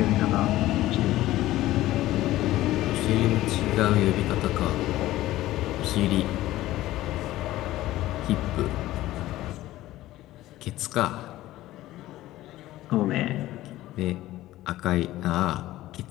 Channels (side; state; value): right; quieter; 15.8 dB